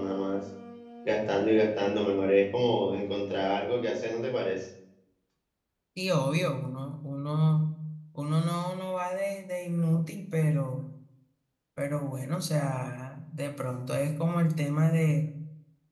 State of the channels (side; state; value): both; identical; correlation 1.00